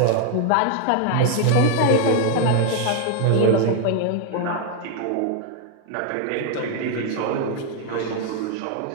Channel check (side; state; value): both; different; correlation 0.00